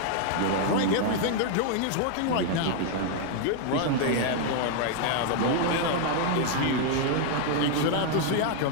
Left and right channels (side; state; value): both; different; correlation 0.00